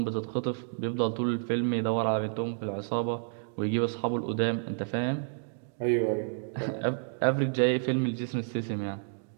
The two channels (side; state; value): left; silent; digital silence